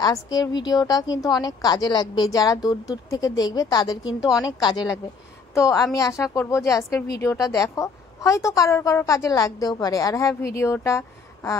আজকের ভিডিওটা কিন্তু অনেক কাজে লাগবে, যারা দূর দূর থেকে দেখবে তাদের কিন্তু অনেক কাজে লাগবে। তো আমি আশা করব যে আজকের ভিডিওটা দেখো, হয়তো কারোর কারোর কাজে লাগতেও পারে। আর হ্যাঁ, ভিডিওটা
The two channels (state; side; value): quieter; right; 4.9 dB